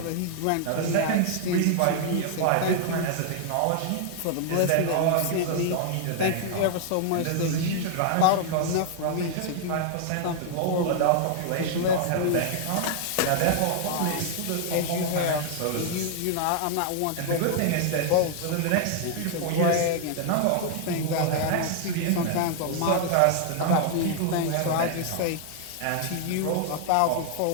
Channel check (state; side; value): different; both; correlation 0.00